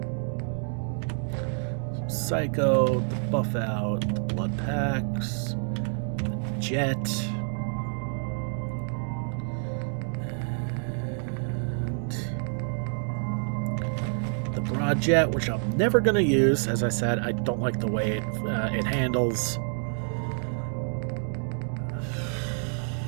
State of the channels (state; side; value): silent; left; 55 dB below the other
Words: Psycho, the buff out, the blood packs, the jet. And the broad jet, which I'm never going to use. As I said, I don't like the way it handles.